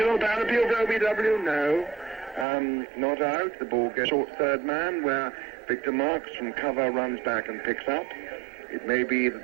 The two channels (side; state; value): left; drops out; at 2.5 s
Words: down appeal for OBW. No. Not out. The ball goes short third man, where Victor Marks from cover runs back and picks up. It may be